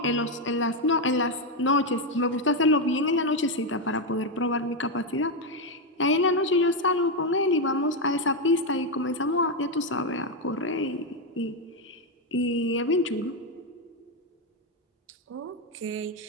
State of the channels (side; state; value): both; normal; correlation 0.06